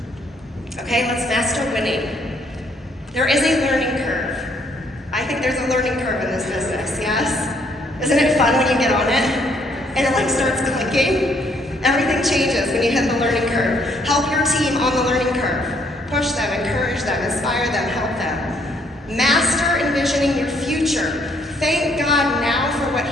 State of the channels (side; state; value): both; normal; correlation 0.67